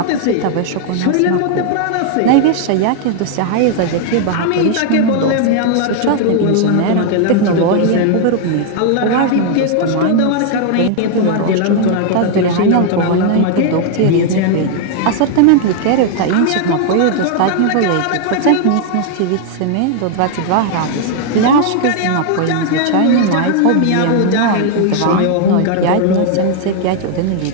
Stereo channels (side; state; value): both; different; correlation 0.00